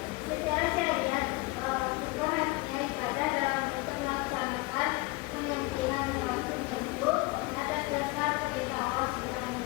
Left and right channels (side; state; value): right; quieter; 23.5 dB